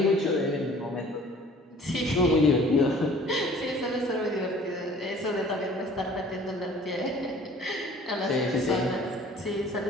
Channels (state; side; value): normal; both; correlation 0.51